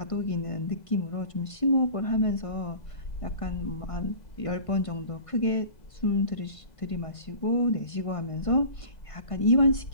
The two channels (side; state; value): right; late; 1.5 ms